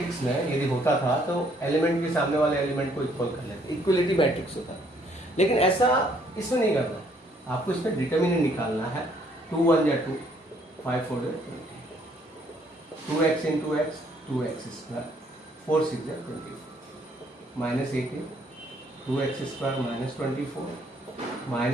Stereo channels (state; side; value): normal; both; correlation 0.66